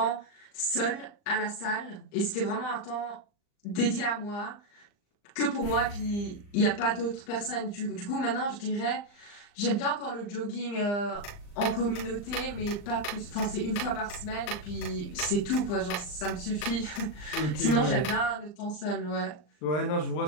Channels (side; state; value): right; late; 39 ms